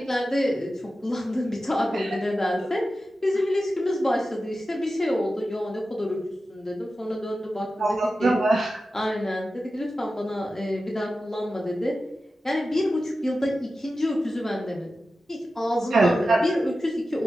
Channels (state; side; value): normal; both; correlation 0.93